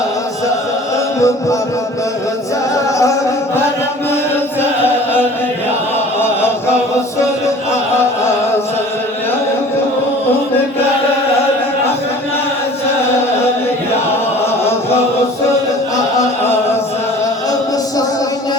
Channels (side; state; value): both; normal; correlation 0.46